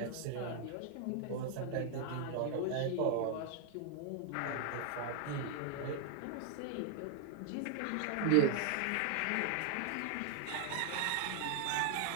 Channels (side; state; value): both; different; correlation 0.00